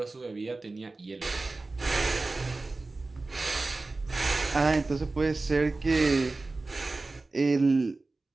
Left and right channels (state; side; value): quieter; left; 3.4 dB